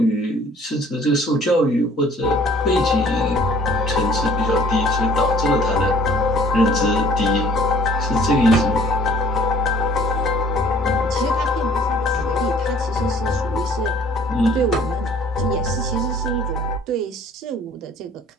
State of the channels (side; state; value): both; normal; correlation 0.54